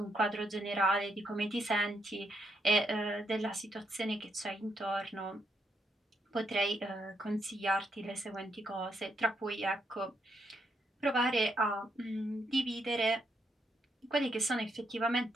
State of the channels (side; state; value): both; normal; correlation 0.77